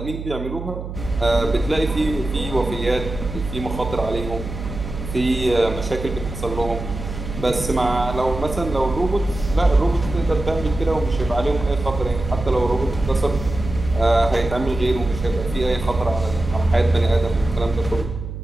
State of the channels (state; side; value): noise; right; hum, 8 dB below the sound